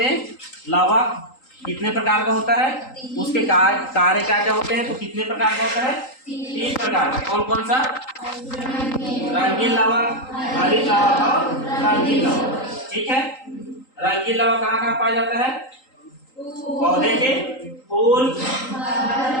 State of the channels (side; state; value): right; late; 3.8 ms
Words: लवक कितने प्रकार का होता है, उसके कार्य क्या क्या होते हैं। तो कितने प्रकार का होता है? 3 प्रकार का। कौन कौन सा? रंगीन लवक, हरित लवक और रंगीन लवक। ठीक है, रंगीन लवक कहाँ कहाँ पाया जाता है? पौधे के फूल,